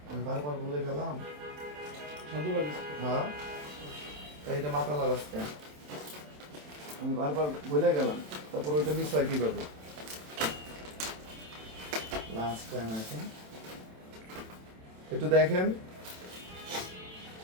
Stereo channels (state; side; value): late; left; 27 ms